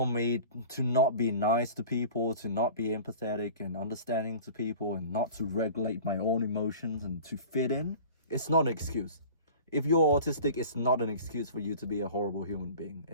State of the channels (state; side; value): inverted; both; correlation -0.41